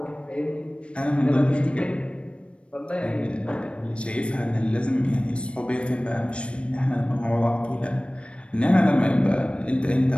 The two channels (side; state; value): right; late; 0.059 ms